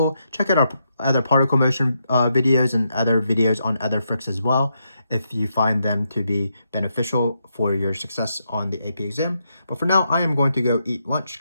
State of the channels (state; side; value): inverted; both; correlation -0.81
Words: Check out our other particle motion videos and other videos on other FRQs as well, if you find them to be beneficial for your success on the AP exam. But for now, I am going to go eat lunch